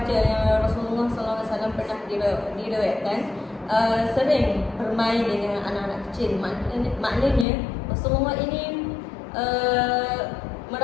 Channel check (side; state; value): right; drops out; at 7.5 s